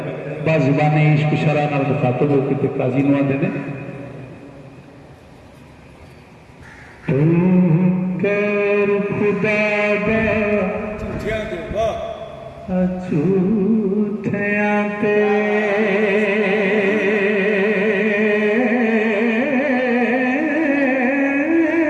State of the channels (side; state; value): both; identical; correlation 1.00